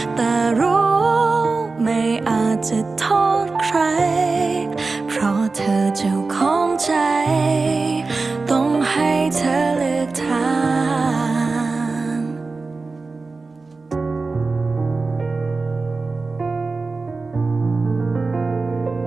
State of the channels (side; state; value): left; quieter; 3.9 dB